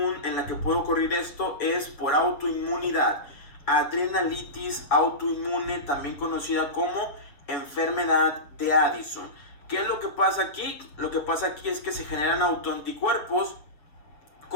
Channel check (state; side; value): late; right; 6.8 ms